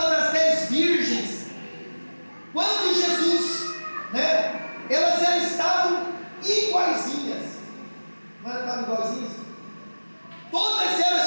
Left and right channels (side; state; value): both; inverted; correlation -1.00